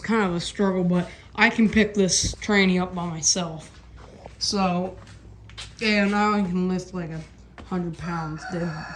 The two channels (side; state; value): both; identical; correlation 1.00